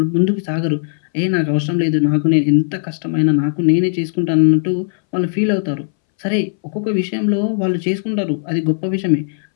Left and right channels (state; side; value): silent; right; 64 dB below the other